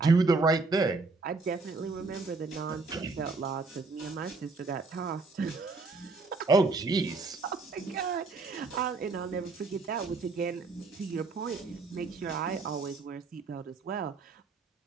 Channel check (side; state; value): left; quieter; 3.9 dB